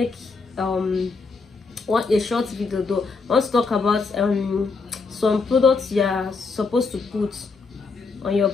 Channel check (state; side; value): quieter; right; 4.3 dB